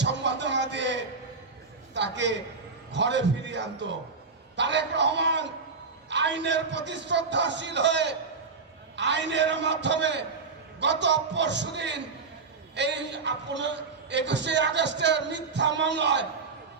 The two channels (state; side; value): quieter; left; 4.5 dB